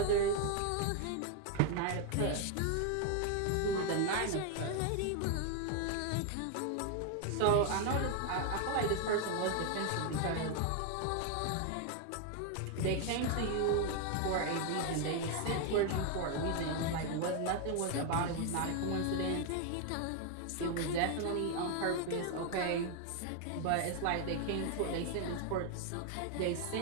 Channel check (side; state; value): both; different; correlation 0.01